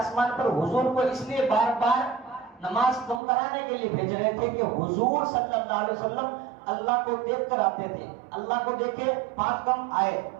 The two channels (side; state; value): left; drops out; at 3.2 s